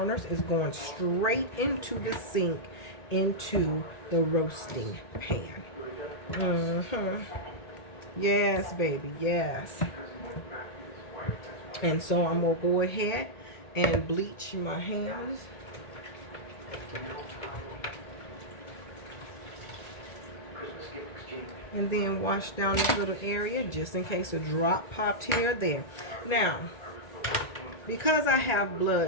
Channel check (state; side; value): late; right; 1.8 ms